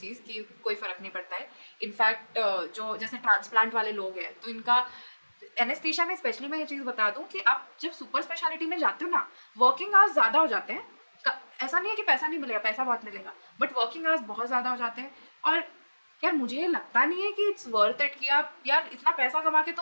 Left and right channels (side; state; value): both; inverted; correlation -1.00